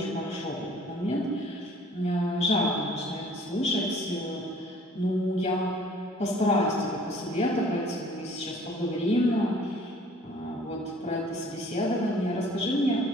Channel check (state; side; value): normal; both; correlation 0.53